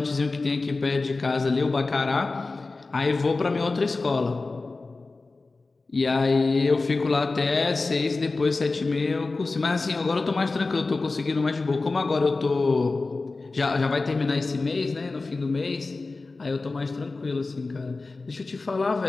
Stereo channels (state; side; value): quieter; right; 3.6 dB